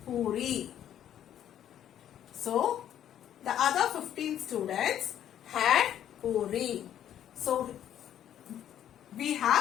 puri. So the other 15 students had puri. So we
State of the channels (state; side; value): quieter; right; 10.6 dB